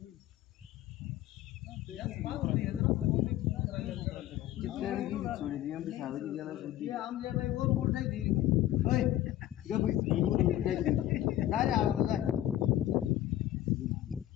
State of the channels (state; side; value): quieter; right; 13.4 dB